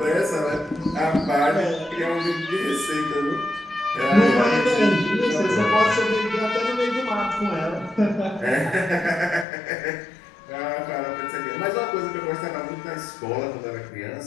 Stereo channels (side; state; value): right; drops out; at 9.5 s